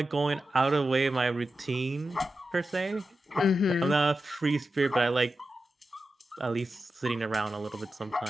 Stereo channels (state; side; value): normal; both; correlation 0.91